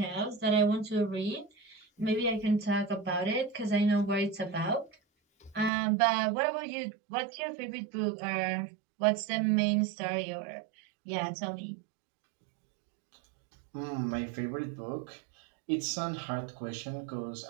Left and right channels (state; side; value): drops out; left; at 5.7 s